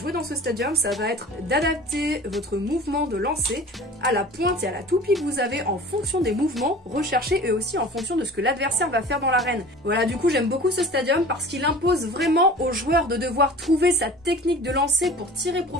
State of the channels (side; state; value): both; normal; correlation 0.41